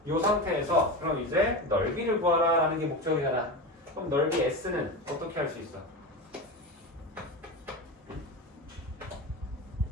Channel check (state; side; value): normal; both; correlation 0.23